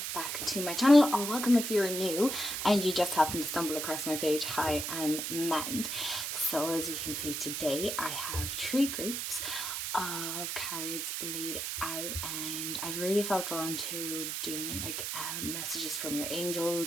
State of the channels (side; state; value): right; noise; hiss, 3 dB below the sound